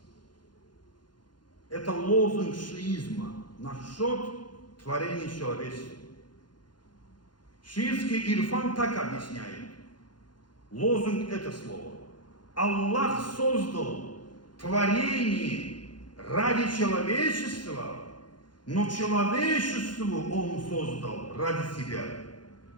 Это лозунг шиизма насчет творения человечества. Шиитский ирфан так объясняет. Лозунг это слово. Аллах создал творение ради человечества, но человечеству Он создал ради себя.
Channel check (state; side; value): late; right; 0.71 ms